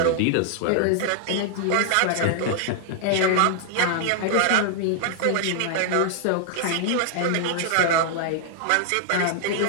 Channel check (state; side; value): different; both; correlation 0.00